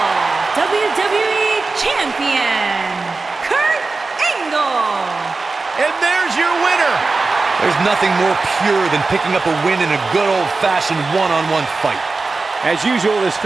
WWE Champion, Kurt Angle. And there's your winner. There's nothing more pure than picking up a win in a good old-fashioned one-on-one fight. As usual, this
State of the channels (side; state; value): left; quieter; 3.8 dB